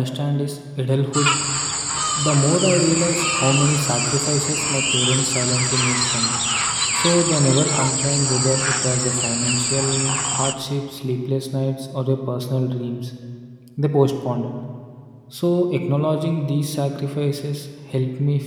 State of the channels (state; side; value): identical; both; correlation 1.00